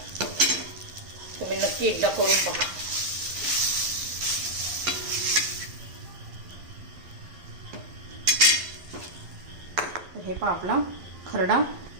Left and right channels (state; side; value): late; left; 11 ms